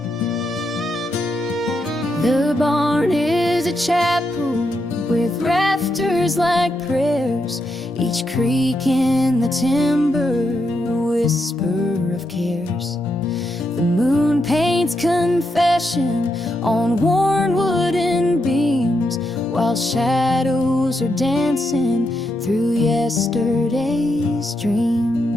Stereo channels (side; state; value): both; normal; correlation 0.82